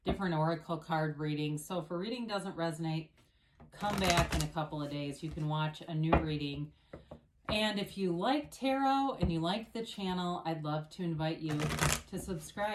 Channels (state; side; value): identical; both; correlation 1.00